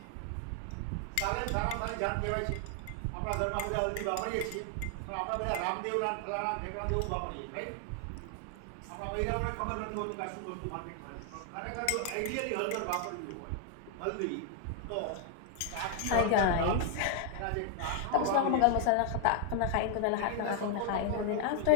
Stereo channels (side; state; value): both; different; correlation 0.00